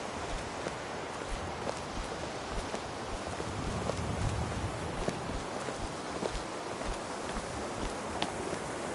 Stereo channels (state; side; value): identical; both; correlation 1.00